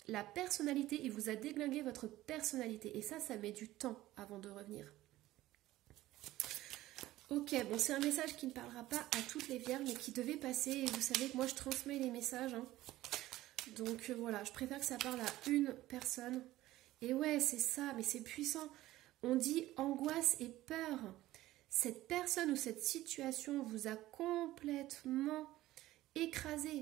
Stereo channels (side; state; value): left; quieter; 16.0 dB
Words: la personnalité, il vous a déglingué votre personnalité et ça met du temps avant de revenir. Ok, bon, c'est un message qui ne parlera pas à toutes les vierges, mais qui devait passer et vous savez que moi je transmets les messages. Hein. Donc voilà, je préfère que ça parle à une personne. Et ouais, c'est ça, mais c'est puissant. On dit angoisse et peur. Cette personne ou cette situation vous a complètement